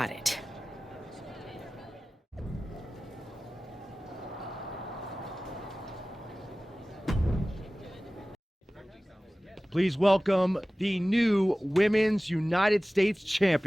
it. Please welcome the new Women's United States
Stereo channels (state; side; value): normal; both; correlation 0.97